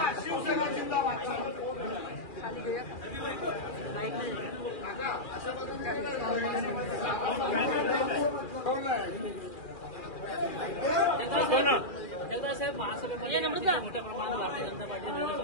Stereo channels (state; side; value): late; right; 2.4 ms